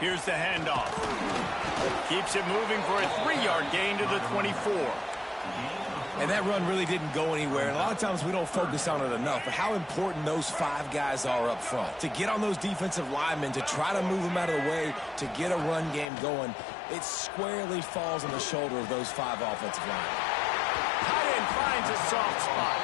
the handoff. Keeps it moving for a 3-yard gain to the 24. And that run really didn't go anywhere. And a lot of times we don't focus on it enough, but how important those 5 guys are up front. To get on those defensive linemen, to try to move them out of the way, to get a run game going, it squarely falls on the shoulder of those 5 offensive linemen. Tight end finds a soft spot.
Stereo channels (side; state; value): right; drops out; at 16.1 s